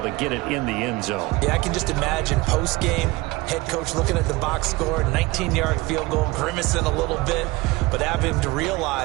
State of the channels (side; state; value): left; quieter; 21.5 dB